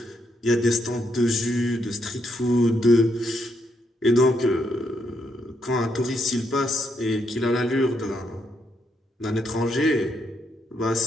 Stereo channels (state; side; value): normal; both; correlation 0.77